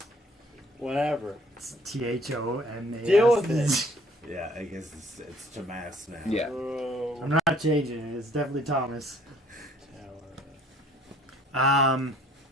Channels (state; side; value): normal; both; correlation 0.58